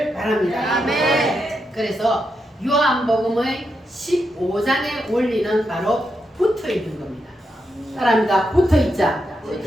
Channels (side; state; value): both; normal; correlation 0.84